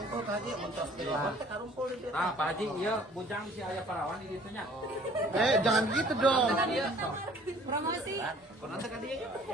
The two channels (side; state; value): both; normal; correlation 0.54